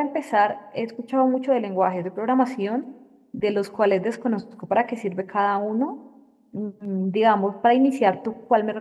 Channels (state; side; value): identical; both; correlation 1.00